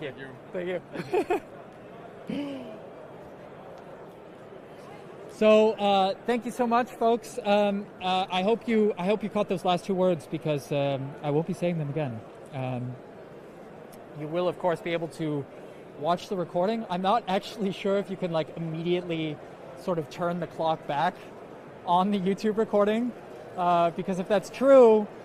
you. Thank you. So thank you so much, folks. I hope you caught those last 2 words, because I won't be saying them again. You will, of course, be able to watch the recording. I'm not actually sure if you can immediately sort of turn the clock back on the YouTube recording, because if that's true,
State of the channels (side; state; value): both; identical; correlation 1.00